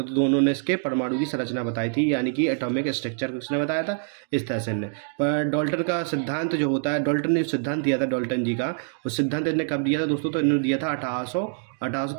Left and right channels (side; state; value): left; silent; 62 dB below the other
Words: दोनों ने इसके परमाणु की संरचना बताई थी, यानी कि एटॉमिक स्ट्रक्चर किसने बताया था? इस तरह से इनने। पर डाल्टन का सिद्धांत जो होता है, डाल्टन ने जो सिद्धांत दिया था डाल्टन जी का, उस सिद्धांत इन्होंने कब दिया था दोस्तों? तो इन्होंने दिया था